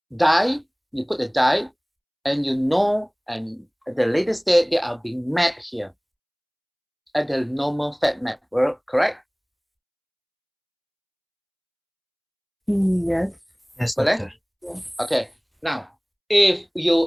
dye, you put the dye, and and at the later stage, they are being mapped here at the normal fat map, correct? Yes. Yes, Correct? Yeah. Okay. Now, if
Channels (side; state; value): both; identical; correlation 1.00